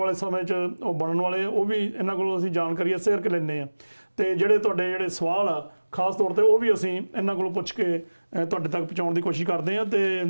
ਸਮੇਂ 'ਚ ਉਹ ਬਣਨ ਵਾਲੇ ਆ, ਉਹ ਵੀ ਇਹਨਾਂ ਕੋਲੋਂ ਅਸੀਂ ਜਾਣਕਾਰੀ ਸ਼ੇਅਰ ਕਰ ਲੈਂਦੇ ਹਾਂ। ਤੇ ਜਿਹੜੇ ਤੁਹਾਡੇ ਜਿਹੜੇ ਸਵਾਲ ਆ ਖਾਸ ਤੌਰ ਤੇ ਉਹ ਵੀ ਅਸੀਂ ਇਹਨਾਂ ਕੋਲੋਂ ਪੁੱਛ ਕੇ ਤੁਹਾਡੇ ਤੱਕ ਪਹੁੰਚਾਉਣ ਦੀ ਕੋਸ਼ਿਸ਼ ਕਰਦੇ ਹਾਂ। ਤੇ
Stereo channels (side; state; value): both; inverted; correlation -1.00